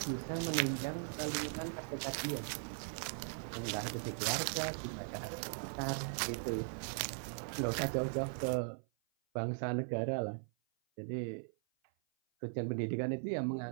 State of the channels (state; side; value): silent; left; 52 dB below the other